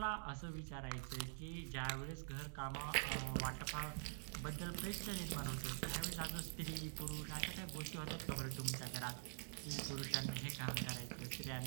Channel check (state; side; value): silent; left; digital silence